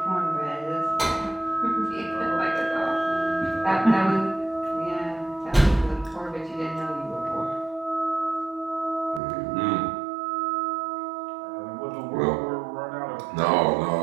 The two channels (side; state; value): left; drops out; at 9.2 s